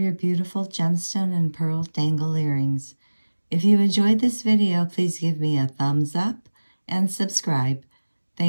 beautiful gemstone and pearl dangle earrings. If you enjoyed this video, please give me a thumbs up and subscribe.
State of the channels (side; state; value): both; inverted; correlation -1.00